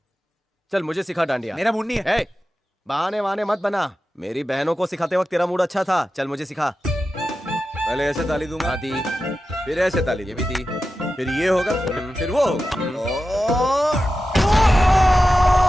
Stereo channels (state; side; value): normal; both; correlation 0.92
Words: चल मुझे सिखा डांडिया। मेरा मूड नहीं है। बहाने वहाने मत बना। मेरी बहनों को सिखाते वक्त तेरा मूड अच्छा था। चल मुझे सिखा। पहले ऐसे ताली दूंगा, दी, फिर ऐसे ताली, ये भी दी, फिर ये होगा, फिर वो होगा।